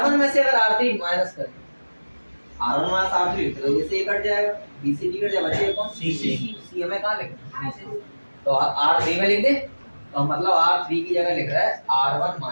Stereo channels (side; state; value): both; inverted; correlation -1.00